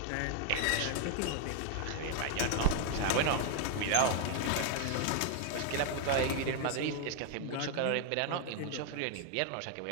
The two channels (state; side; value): different; both; correlation 0.01